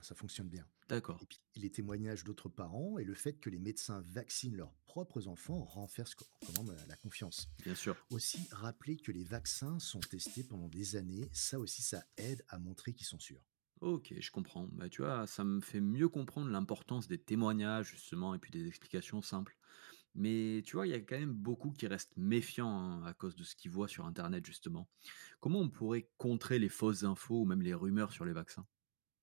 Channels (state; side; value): silent; left; digital silence